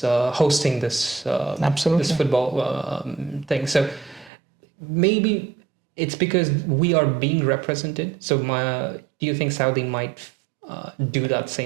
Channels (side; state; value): left; drops out; at 4.3 s